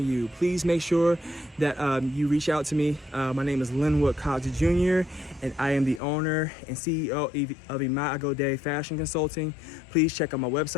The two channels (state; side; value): drops out; right; at 6.0 s